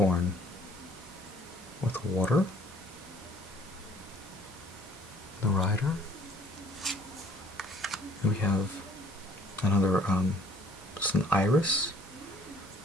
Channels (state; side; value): normal; both; correlation 0.57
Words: with water, the rider. And we have another, it's an iris,